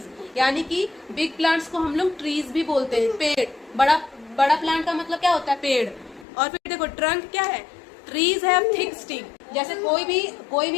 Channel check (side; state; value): right; drops out; at 6.2 s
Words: यानी कि बिग प्लांट्स को हम लोग ट्रीज भी बोलते हैं, पेड़। बड़ा बड़ा प्लांट का मतलब क्या होता है, पेड़। और फिर देखो ट्रंक क्या है, ट्रीज हैव थिक स्टिक। जैसे कोई